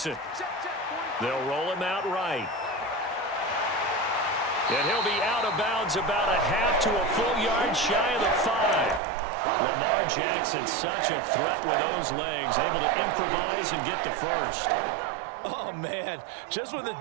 They'll roll him out right. And he'll be out of bounds about a half to a full yard shy of the 5. Lamar Jackson, such a threat with those legs, able to improvise and get the first. Oh, man. Just when the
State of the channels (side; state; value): left; drops out; at 9.0 s